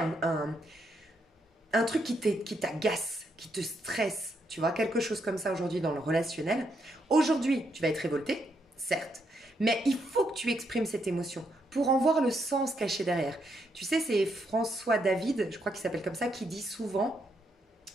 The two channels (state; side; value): normal; both; correlation 0.77